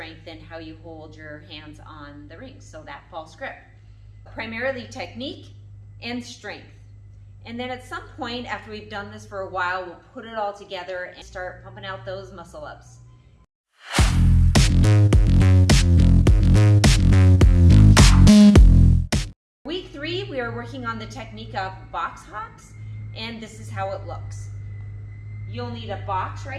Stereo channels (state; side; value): identical; both; correlation 1.00